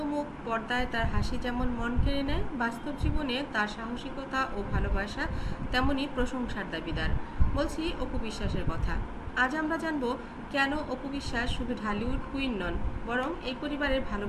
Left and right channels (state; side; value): identical; both; correlation 1.00